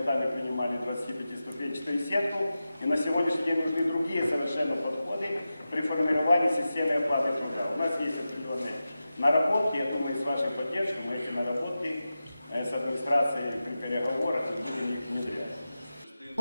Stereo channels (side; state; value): both; inverted; correlation -0.93